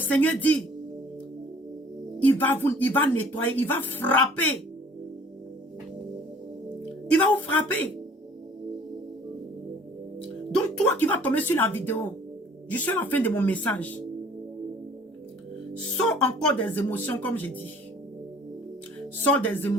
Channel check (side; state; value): both; normal; correlation 0.52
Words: dit, il va nettoyer, il va frapper. Il va vous frapper. Donc toi qui vas tomber sur la vidéo, je suis à la fin de mon message. Sors encore des émotions comme j'ai dit. Sors des